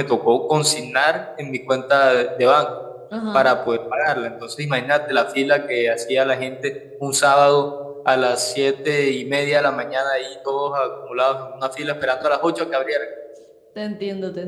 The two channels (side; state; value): both; identical; correlation 1.00